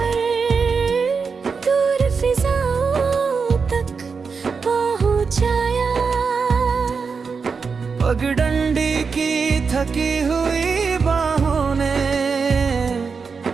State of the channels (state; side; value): quieter; left; 5.3 dB